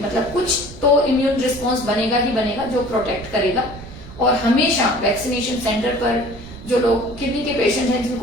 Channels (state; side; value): noise; right; rumble, 15 dB below the sound